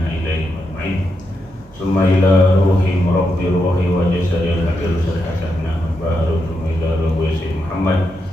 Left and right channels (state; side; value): normal; both; correlation 0.84